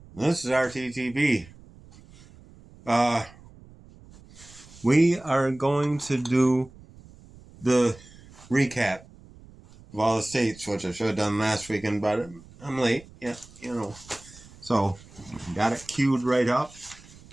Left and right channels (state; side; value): noise; right; rumble, 22 dB below the sound